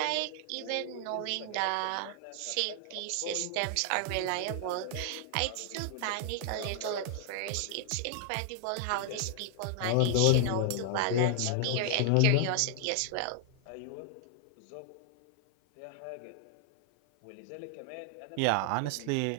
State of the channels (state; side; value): different; both; correlation -0.01